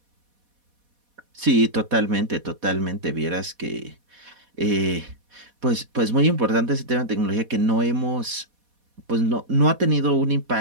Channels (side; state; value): left; late; 4.1 ms